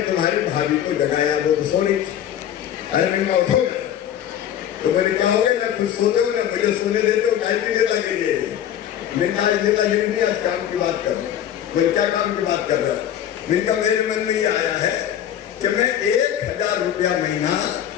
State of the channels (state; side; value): quieter; right; 10.4 dB